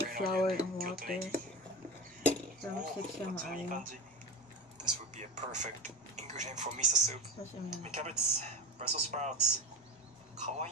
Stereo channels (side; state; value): both; normal; correlation 0.26